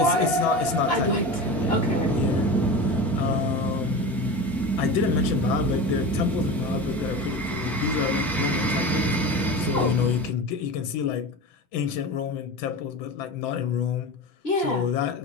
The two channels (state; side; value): normal; both; correlation 0.28